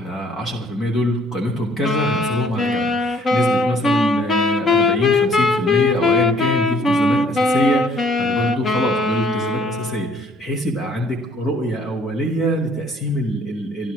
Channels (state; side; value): normal; both; correlation 0.61